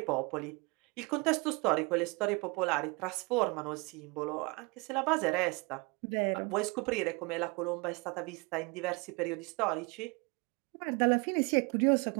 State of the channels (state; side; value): quieter; left; 28.4 dB